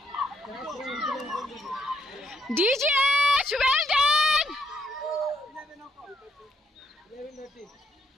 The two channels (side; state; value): both; normal; correlation 0.72